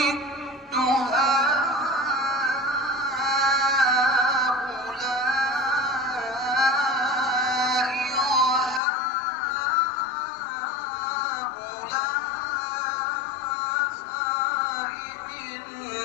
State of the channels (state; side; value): drops out; right; at 8.8 s